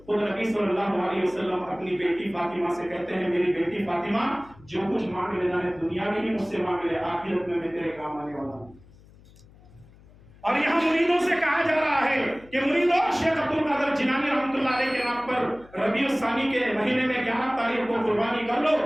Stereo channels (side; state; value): left; noise; hum, 24 dB below the sound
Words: خود نبی صلی اللہ علیہ وسلم اپنی بیٹی فاطمہ سے کہتے ہیں: میری بیٹی فاطمہ، جو کچھ مانگ لینا ہے دنیا میں ہی مجھ سے مانگ لے، آخرت میں تیرے کام آنے والا ہوں. اور یہاں مریدوں سے کہا جا رہا ہے کہ مریدوں، شیخ عبد القادر جیلانی رحمۃ اللہ علیہ کے نام پر ربیع الثانی کے مہینے میں 11 تاریخ کو قربانی کر لو.